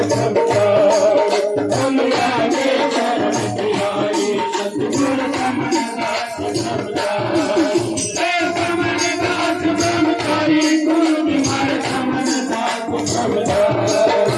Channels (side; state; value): both; identical; correlation 1.00